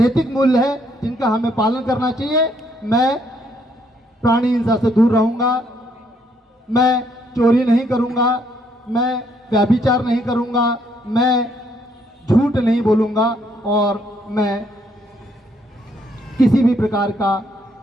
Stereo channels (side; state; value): both; normal; correlation 0.70